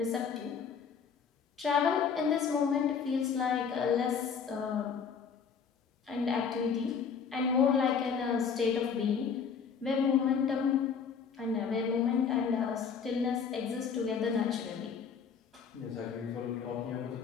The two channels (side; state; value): right; quieter; 6.4 dB